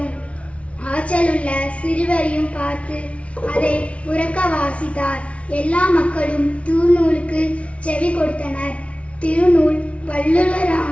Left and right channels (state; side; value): late; right; 0.063 ms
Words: ஆற்றலுள்ள சிறுவரையும் பார்த்து அதை உரக்க வாசித்தார். எல்லா மக்களும் திருநூலுக்கு செவி கொடுத்தனர். திருநூல்